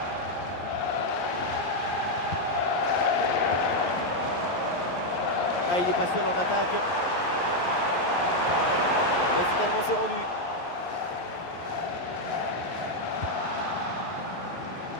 Ah, il est pas seul en attaque. Mais finalement c'est rendu.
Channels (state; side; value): late; right; 11 ms